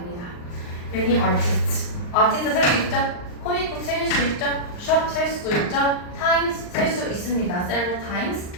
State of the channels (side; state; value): right; late; 39 ms